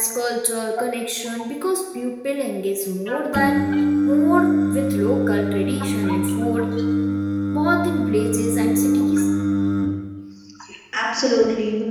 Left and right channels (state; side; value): identical; both; correlation 1.00